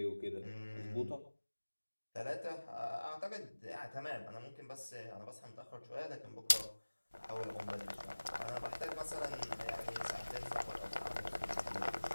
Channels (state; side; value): inverted; both; correlation -1.00